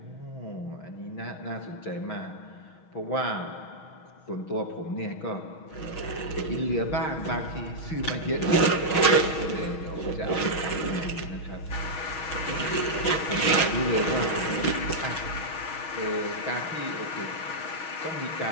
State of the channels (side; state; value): right; late; 6.3 ms